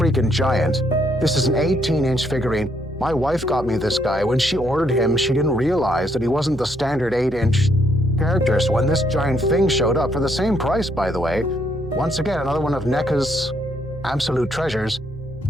giant. This is an 18-inch figurine. My wife got me this guy. When she ordered him, she didn't realize that he wasn't the standard 8-inch character. So when this giant thing showed up, for the same price, by the way, once again, another one of NECA's absolute treasures,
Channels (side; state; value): both; normal; correlation 0.72